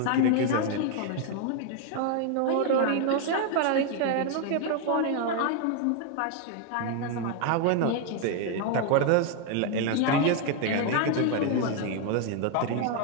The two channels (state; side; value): different; both; correlation 0.01